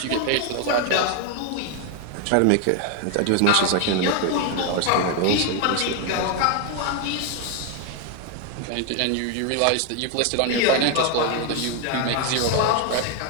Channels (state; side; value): different; both; correlation 0.01